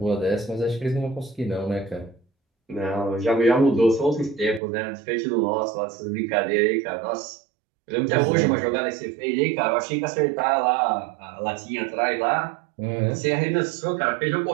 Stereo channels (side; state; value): left; drops out; at 4.6 s